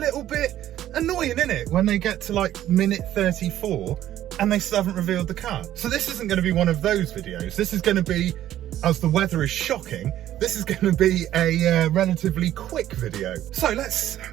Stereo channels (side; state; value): left; quieter; 12.6 dB